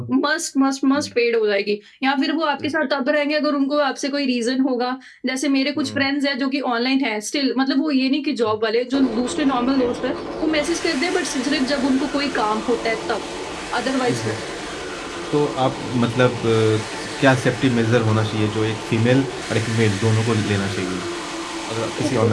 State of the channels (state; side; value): identical; both; correlation 1.00